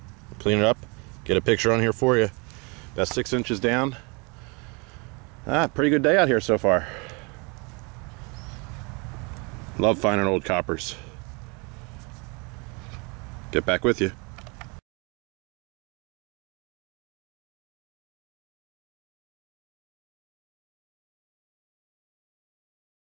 clean it up, get a picture on here for you. About 6 inches down. Pretty good day out here so far. Love finding old coppers. Get back with you.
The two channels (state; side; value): quieter; left; 30.4 dB